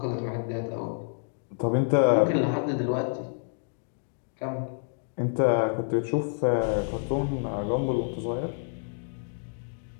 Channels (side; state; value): right; silent; digital silence